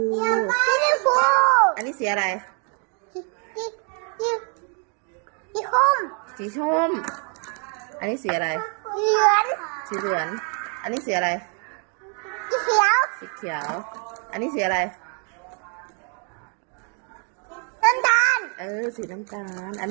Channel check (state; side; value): quieter; left; 39.8 dB